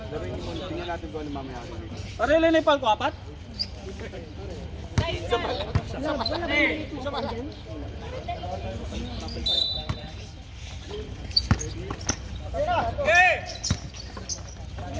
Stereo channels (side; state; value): both; identical; correlation 1.00